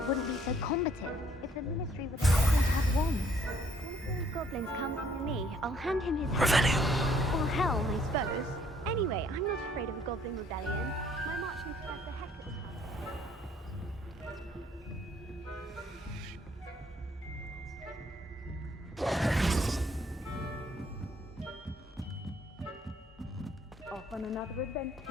wouldn't be so combative if the ministry were going to have wands. One of those goblins comes near me, I'll hand him his Revelio. or helm, I suppose. Anyway, I'm not afraid of a goblin rebellion. My marching professor Hector will come. Off on another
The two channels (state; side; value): normal; both; correlation 0.63